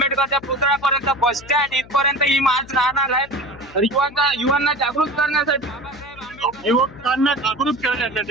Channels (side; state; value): left; noise; hum, 21 dB below the sound